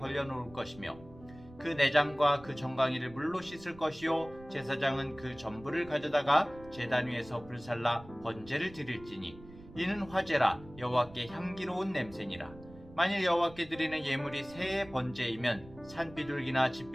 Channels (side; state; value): right; noise; rumble, 19 dB below the sound